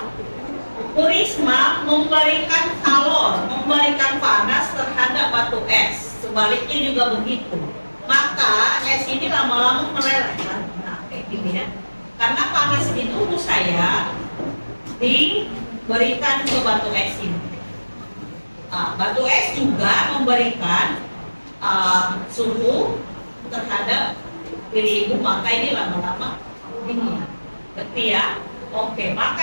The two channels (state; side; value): inverted; both; correlation -1.00